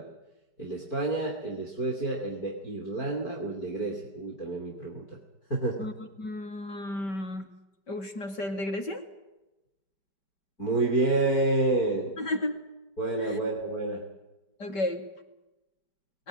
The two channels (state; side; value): late; right; 5.2 ms